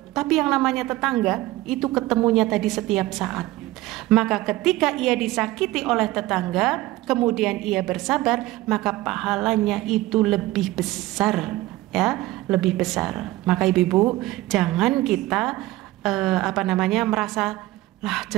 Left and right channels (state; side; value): quieter; left; 17.5 dB